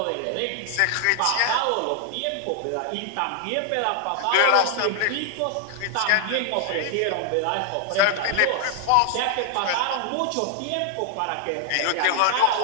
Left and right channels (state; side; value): different; both; correlation 0.00